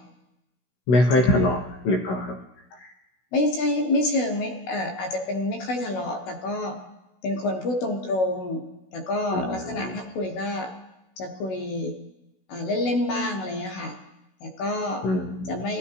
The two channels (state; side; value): late; right; 16 ms